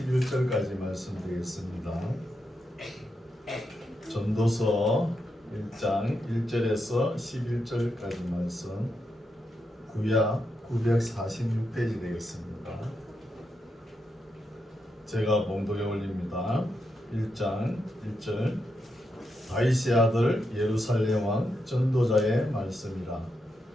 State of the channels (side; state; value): both; normal; correlation 0.84